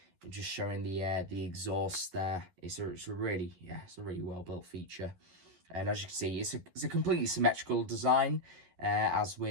just showing the exhaust there. It's a really well built feature. And as you can see, it's a completely symmetrical design, as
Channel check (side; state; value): left; late; 11 ms